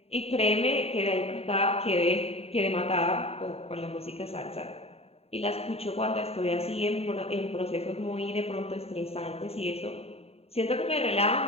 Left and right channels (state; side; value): late; right; 0.29 ms